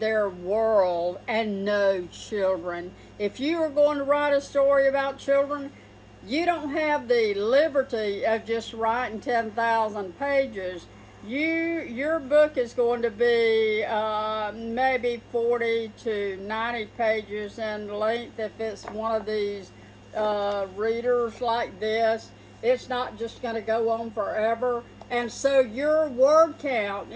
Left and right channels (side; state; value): both; identical; correlation 1.00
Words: world and know children. If you are going to write a story about children, you don't have the liberty of just writing 10,000 pages. Your book is going to be maybe 40 to 90 pages in length if it's one of these readers like this. It's not just going to go on forever. And so your word count